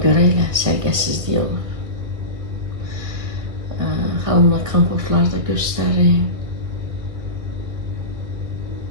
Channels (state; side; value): late; left; 2.1 ms